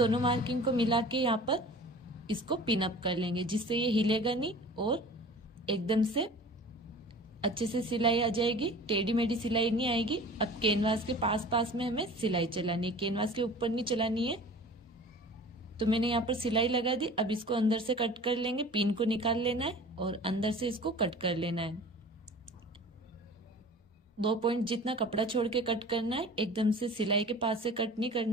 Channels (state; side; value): normal; both; correlation 0.42